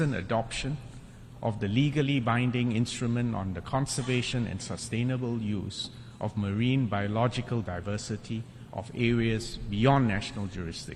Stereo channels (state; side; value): identical; both; correlation 1.00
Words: adoption of the legally binding instrument on the conservation and sustainable use of marine biological diversity of areas beyond national